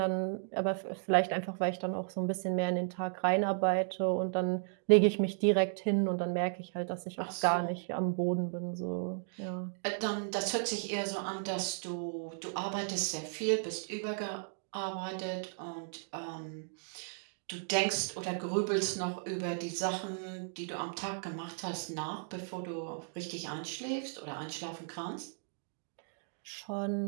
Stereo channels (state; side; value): silent; left; digital silence